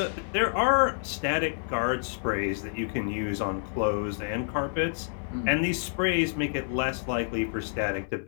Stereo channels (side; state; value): right; silent; digital silence